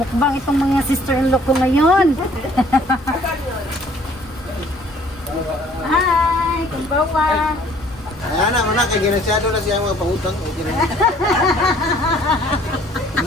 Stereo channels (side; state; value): both; normal; correlation 0.57